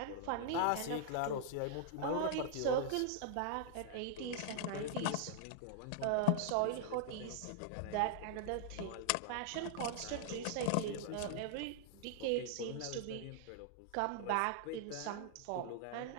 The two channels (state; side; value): different; both; correlation -0.01